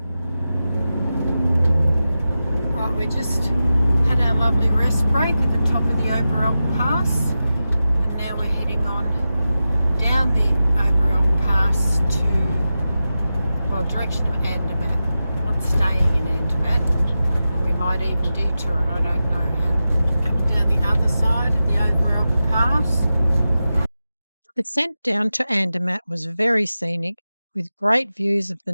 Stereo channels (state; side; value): inverted; both; correlation -0.93